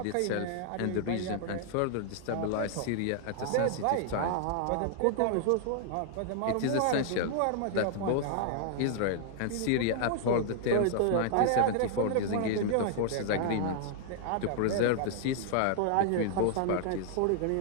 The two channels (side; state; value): both; different; correlation -0.01